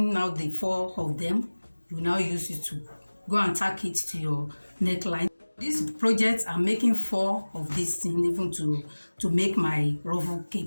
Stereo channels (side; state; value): both; inverted; correlation -1.00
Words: now the 4 of them, you now use it to go and tack it to your neckline. This project, I'm making 4 of this thing, even to make my ruffle